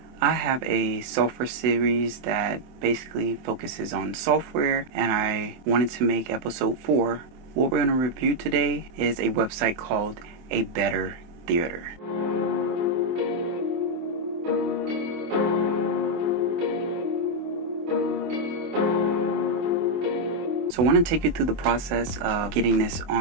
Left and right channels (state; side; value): late; left; 24 ms